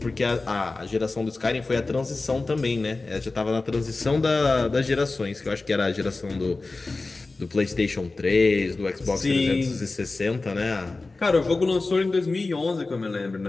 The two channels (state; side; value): quieter; right; 3.5 dB